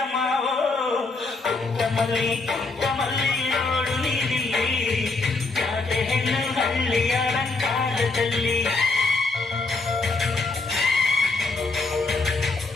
ಮಾವೋ ಪುಟ್ಟ ಮಲ್ಲಿ ನೋಡು ನೀಲಿ ಜಾತೆ ಹೆಣ್ಣು ಹಳ್ಳಿ ಅಲಂಕಾರದಲ್ಲಿ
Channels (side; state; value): right; quieter; 3.6 dB